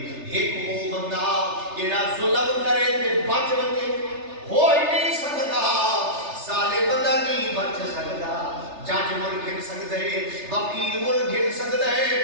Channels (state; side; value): late; left; 3.3 ms